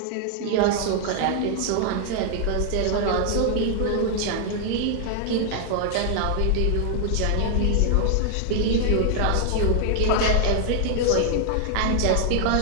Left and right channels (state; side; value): different; both; correlation 0.00